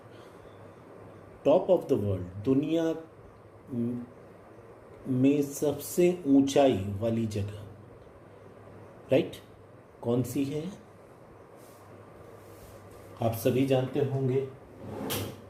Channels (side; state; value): both; identical; correlation 1.00